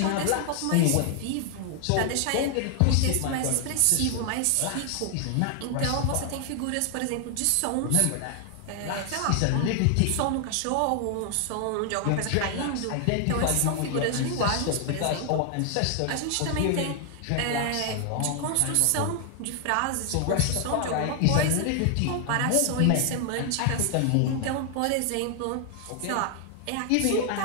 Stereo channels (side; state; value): both; different; correlation 0.00